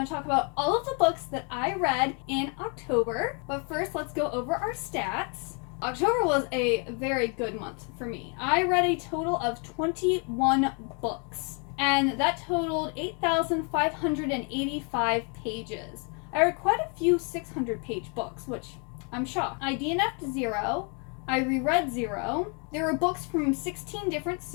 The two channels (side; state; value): right; quieter; 36.6 dB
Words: to talk about all of the books that I read in October. But first, let's go over our stats. October was a very good month for me. I read a total of 21 books, and that totaled 8,585 pages. I read quite a few 600-page books, which I'm shocked. I DNF'd 0. I reread 0. There were books from 16 different